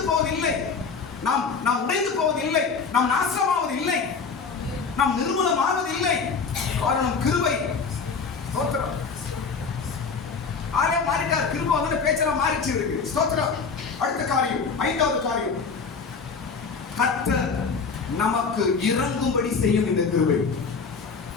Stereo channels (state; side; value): quieter; right; 5.2 dB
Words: போவதில்லை, நாம் உடைந்து போவதில்லை, நாம் நாசமாவதில்லை, நாம் நிர்மூலமாவதில்லை. காரணம் கிருபை. ஸ்தோத்திரம். ஆளே மாறிட்டார், கிருபை பேச்செல்லாம் மாறிச்சு இருக்கு. ஸ்தோத்திரம். அடுத்த காரியம், ஐந்தாவது காரியம், கர்த்தர் நமக்கு இறங்கும்படி செய்யும் இந்த கிருபை.